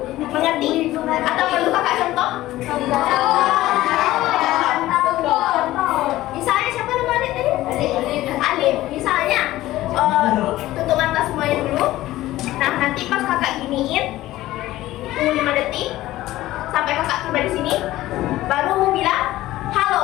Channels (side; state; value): right; quieter; 16.0 dB